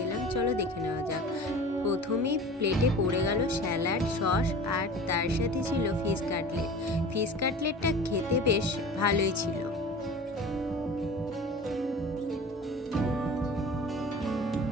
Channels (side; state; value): both; normal; correlation 0.38